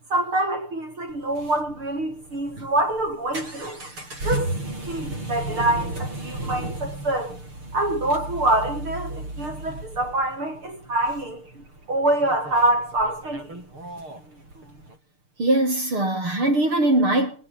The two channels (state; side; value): late; left; 6.6 ms